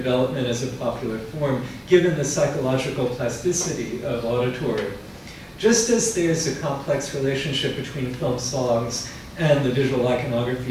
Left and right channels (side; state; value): both; identical; correlation 1.00